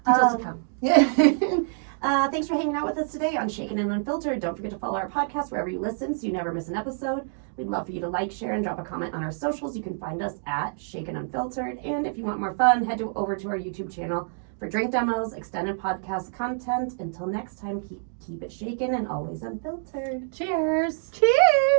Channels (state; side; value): silent; left; digital silence